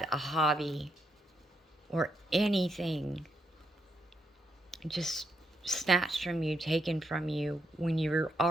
a hobby or anything just snatched from you, taken from you, when you're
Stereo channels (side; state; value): both; normal; correlation 0.79